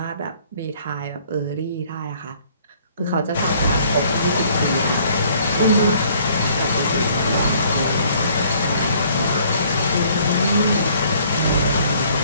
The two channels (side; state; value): both; inverted; correlation -0.60